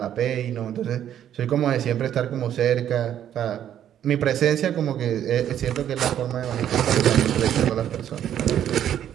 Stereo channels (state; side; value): quieter; left; 10.4 dB